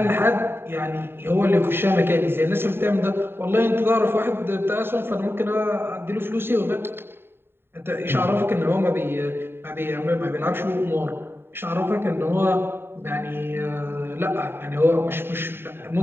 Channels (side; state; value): left; late; 0.11 ms